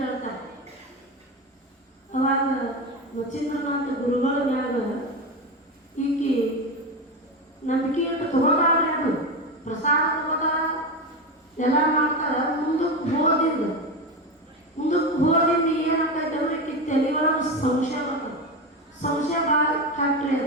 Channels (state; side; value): normal; both; correlation 0.18